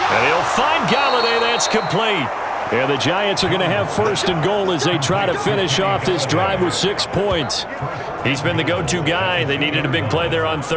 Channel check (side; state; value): both; identical; correlation 1.00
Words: And he'll find Galladay. That's complete. And the Giants are going to have 1st and goal as they try to finish off this drive with 6 points. He's been the go-to guy. They needed a big play there on